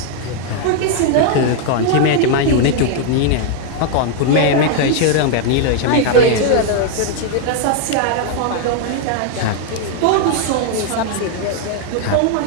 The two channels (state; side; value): different; both; correlation 0.00